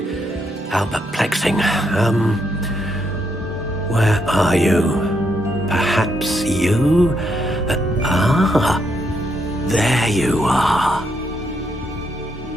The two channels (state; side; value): normal; both; correlation 0.77